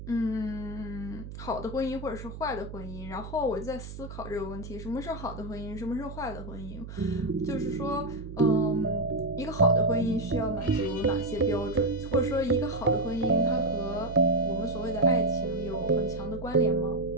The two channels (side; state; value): right; noise; hum, 11 dB below the sound